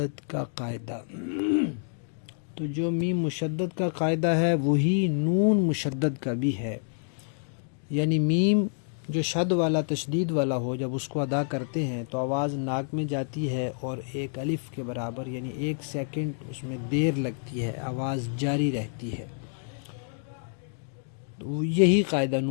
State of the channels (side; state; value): right; silent; digital silence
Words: کا قاعدہ۔ تو جو میم مشدد کا قاعدہ ہے وہی نون مشدد کا بھی ہے، یعنی میم جو شد والا تشدید والا ہو، جب اس کو ادا کرتے ہیں تو آواز ناک میں جاتی ہے اور ایک الف کے برابر یعنی 1 سیکنڈ اس میں دیر لگتی ہے، آواز جاری رہتی ہے۔ تو یہی قاعدہ